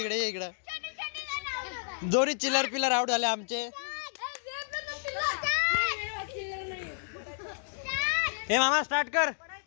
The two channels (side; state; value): right; silent; digital silence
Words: दोन्ही चिल्लर पिल्लर आउट झाले आमचे. हे मामा स्टार्ट कर.